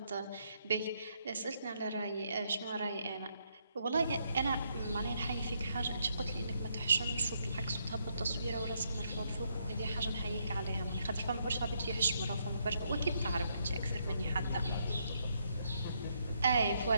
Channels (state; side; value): inverted; both; correlation -0.75